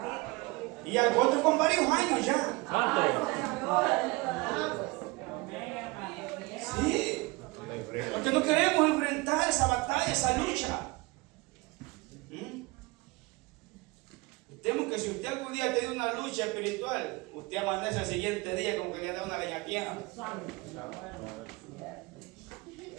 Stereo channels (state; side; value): quieter; left; 24.0 dB